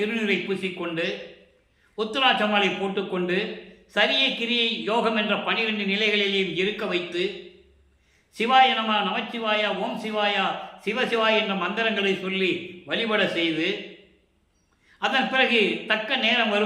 பூசிக்கொண்டு உத்திராட்சமாலை போட்டுக்கொண்டு சரியை கிரியை யோகம் என்ற 12 நிலைகளிலேயும் இருக்க வைத்து சிவாய நம, நமச்சிவாய, ஓம் சிவாயா, சிவசிவாய் என்ற மந்திரங்களை சொல்லி வழிபட செய்து அதன் பிறகு தக்க நேரம்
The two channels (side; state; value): both; identical; correlation 1.00